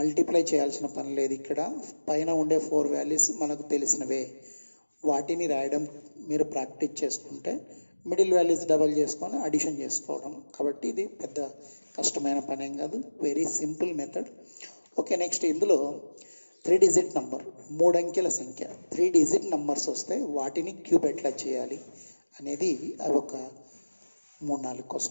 చేయాల్సిన పని లేదు. ఇక్కడ పైన ఉండే 4 వాల్యూస్ మనకు తెలిసినవే, వాటిని రాయడం మీరు ప్రాక్టీస్ చేసుకుంటే మిడిల్ వాల్యూస్ డబల్ చేసుకొని అడిషన్ చేసుకోవడం. కాబట్టి ఇది పెద్ద కష్టమైన పని ఏం కాదు, very simple method. Okay, next ఇందులో 3 డిజిట్ నంబర్, 3 అంకెల సంఖ్య 3 డిజిట్ నంబర్స్ వస్తే వాటిని క్యూబ్ ఎట్లా చేయాలి అనేది అవి ఒక 3-4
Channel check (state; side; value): inverted; both; correlation -1.00